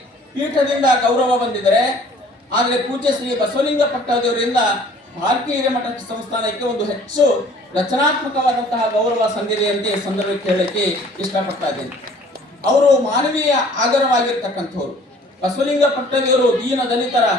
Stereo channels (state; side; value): normal; both; correlation 0.53